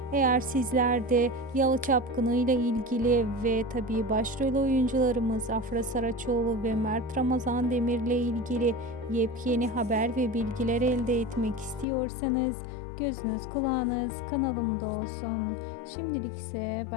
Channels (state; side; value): drops out; right; at 11.9 s